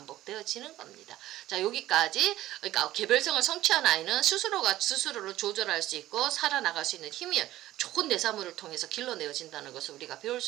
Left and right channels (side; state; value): left; quieter; 15.0 dB